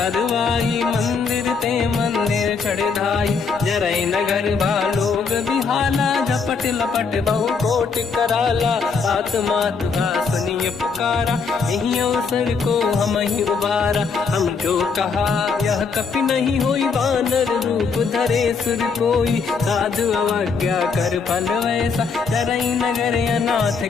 मंदिर ते मंदिर चढ़ धाई। जरई नगर बालोग बिहाला झपट लपट बहु कोट कराला। सात मात सुनिय पुकारा यही अवसर को हम ही उबारा। हम जो कहा यह कपि नहीं होई बानर रूप धरे सुर कोई। साधु अवज्ञा कर फल वैसा जरई नगर अनाथ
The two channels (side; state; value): right; quieter; 5.2 dB